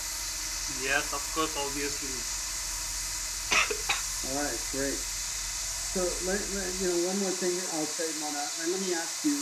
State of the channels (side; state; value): both; identical; correlation 1.00